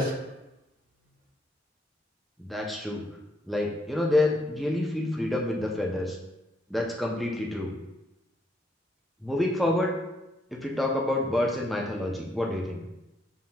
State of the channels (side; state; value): both; normal; correlation 0.73